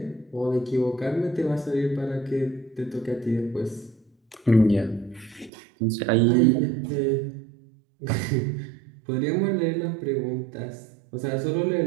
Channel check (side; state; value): left; drops out; at 5.5 s